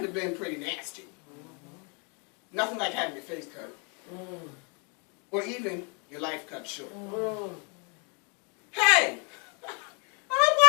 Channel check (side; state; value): right; quieter; 35.5 dB